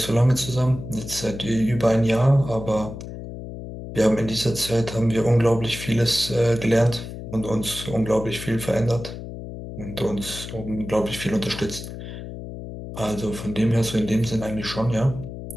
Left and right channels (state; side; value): noise; left; hum, 10 dB below the sound